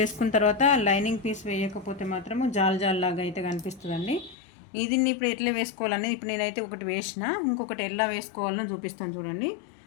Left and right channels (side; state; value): right; drops out; at 4.4 s